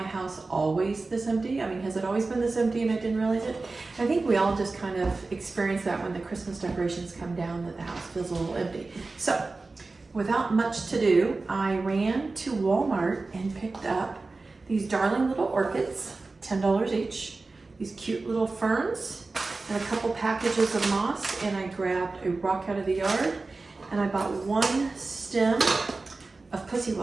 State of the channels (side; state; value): left; quieter; 3.6 dB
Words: house always this empty? I mean, has it always been this empty and I didn't realize it? I think we all just kind of experience that when the Christmas decorations come down, that the house feels a little empty. So without much to do, I ran to Walmart and picked up these darling little orchids, $10 each, these cute little ferns, and a couple packages of moss, and I grabbed a rock out of the yard, and I bought one stem of pussy